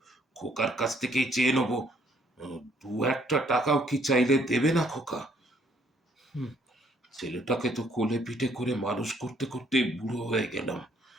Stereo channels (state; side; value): normal; both; correlation 0.66